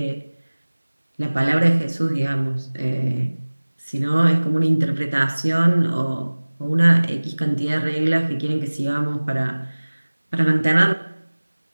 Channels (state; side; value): inverted; both; correlation -1.00